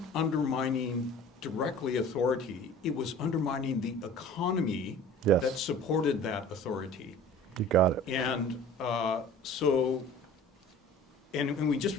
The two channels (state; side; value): normal; both; correlation 0.44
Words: undermining directly authority, it was undermining the economy that supported that authority. You got it. And and we just